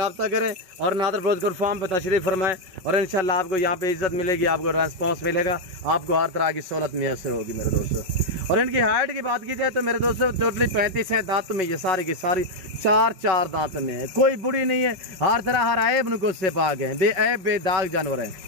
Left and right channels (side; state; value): left; late; 5.4 ms